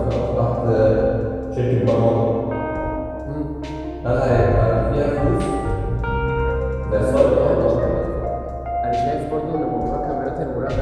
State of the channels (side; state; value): both; identical; correlation 1.00